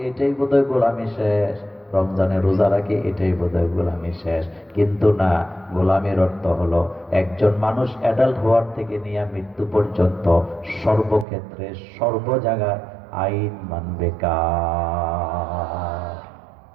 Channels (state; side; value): drops out; left; at 11.2 s